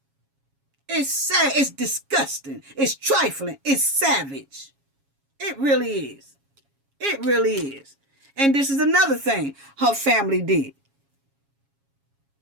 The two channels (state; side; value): late; left; 7.3 ms